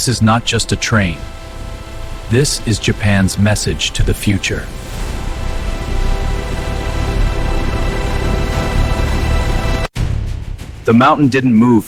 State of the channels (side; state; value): both; identical; correlation 1.00